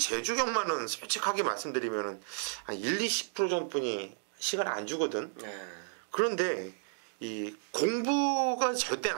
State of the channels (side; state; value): left; silent; digital silence